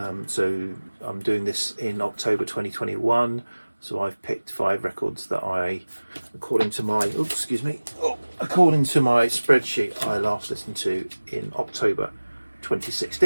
So I'm doing this in October 2021. So I've picked 5 records that I, according to my spreadsheet, I last listened to in October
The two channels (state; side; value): inverted; both; correlation -1.00